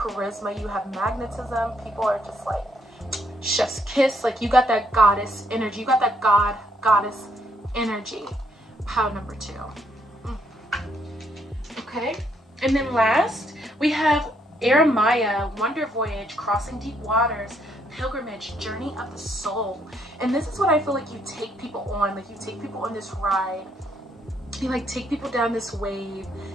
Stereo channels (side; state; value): both; normal; correlation 0.72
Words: You have magnetism. People are just like, chef's kiss. Like, you got that goddess energy. You got that goddess energy, pile number 2. Okay, and then last we have Aramaya, Wonder Voyage, Crossing Deep Waters, Pilgrimage, Journey of the Soul. And this is what I feel like you take people on. Like you take people on this ride. You like take people down this wave